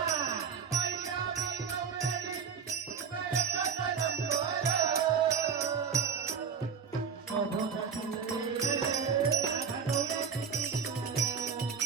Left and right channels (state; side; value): quieter; left; 6.6 dB